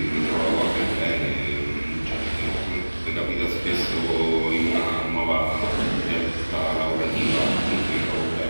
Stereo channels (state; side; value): inverted; both; correlation -1.00